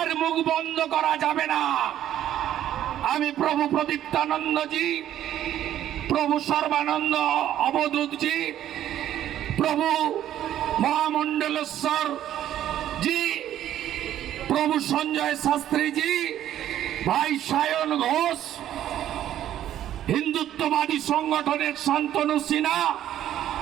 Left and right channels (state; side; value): quieter; left; 11.7 dB